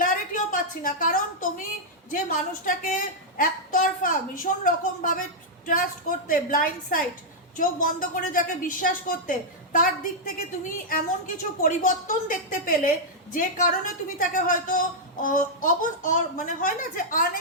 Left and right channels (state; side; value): normal; both; correlation -0.05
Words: পাচ্ছি না। কারণ তুমি যে মানুষটাকে একতরফা ভীষণ রকমভাবে ট্রাস্ট করতে, ব্লাইন্ড সাইড, চোখ বন্ধ করে যাকে বিশ্বাস করতে, তার দিক থেকে তুমি এমন কিছু পরিবর্তন দেখতে পেলে যে কারণে তুমি তাকে হয়তো মানে হয় না যে